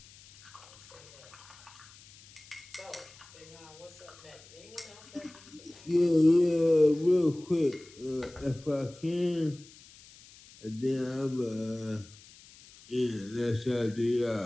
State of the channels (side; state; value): left; noise; hiss, 22 dB below the sound